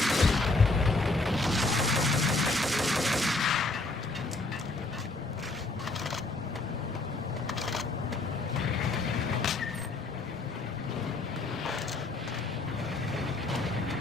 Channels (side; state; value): right; quieter; 3.1 dB